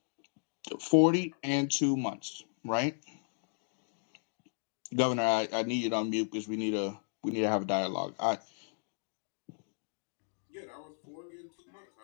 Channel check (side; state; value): right; silent; digital silence